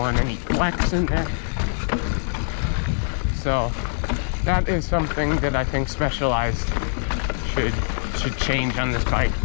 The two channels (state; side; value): silent; right; digital silence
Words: any flex in there. So that is something that I think Specialized should change on this bike.